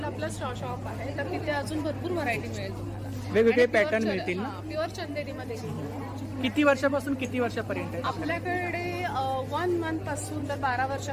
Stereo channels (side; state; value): both; identical; correlation 1.00